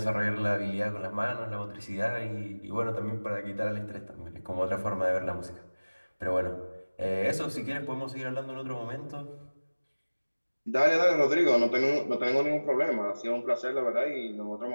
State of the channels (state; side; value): inverted; both; correlation -1.00